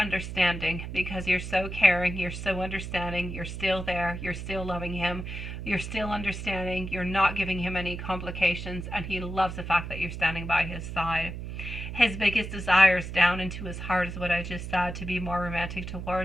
because you're so caring, you're so understanding, you're still there, you're still loving him, you're still understanding, you're not giving him any complications, and he loves the fact that you're standing by his side. His biggest desires down into his heart is what I just said, to be more romantic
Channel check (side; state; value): right; noise; hum, 7 dB below the sound